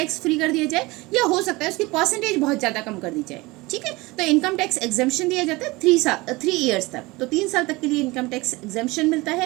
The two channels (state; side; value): quieter; left; 22.4 dB